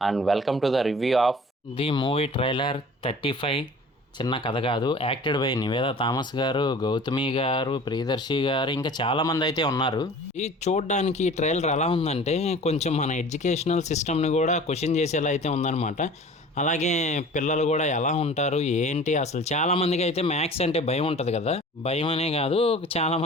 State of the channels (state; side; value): normal; both; correlation 0.44